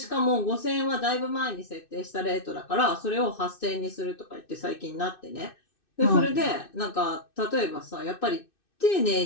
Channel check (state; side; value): late; right; 2.6 ms